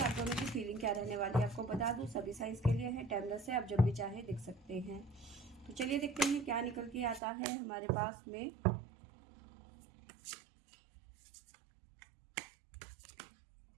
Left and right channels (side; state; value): left; drops out; at 7.2 s